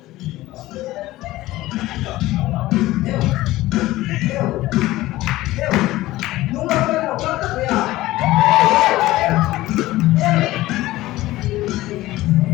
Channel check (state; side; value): quieter; right; 17.1 dB